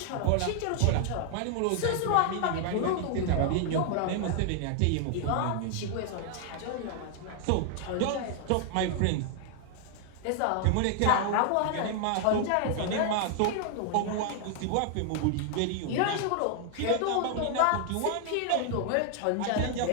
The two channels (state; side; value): different; both; correlation 0.00